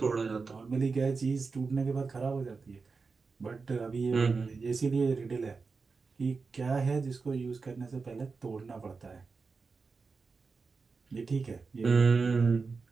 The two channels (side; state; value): left; quieter; 4.6 dB